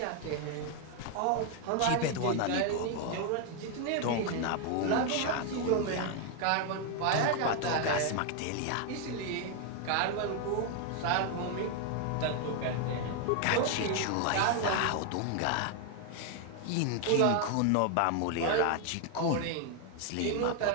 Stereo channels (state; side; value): different; both; correlation 0.01